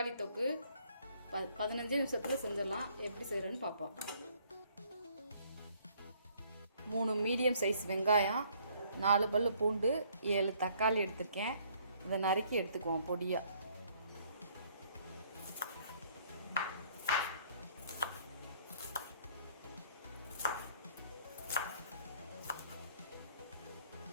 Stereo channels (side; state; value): both; inverted; correlation -0.63